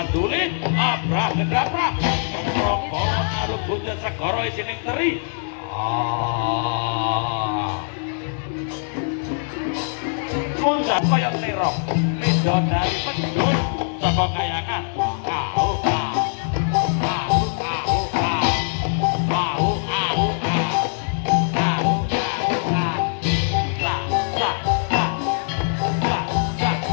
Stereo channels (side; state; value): right; silent; 64 dB below the other